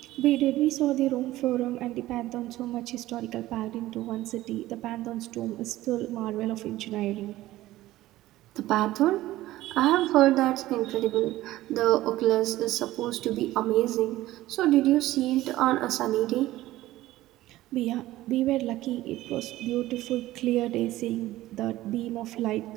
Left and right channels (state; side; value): quieter; left; 16.1 dB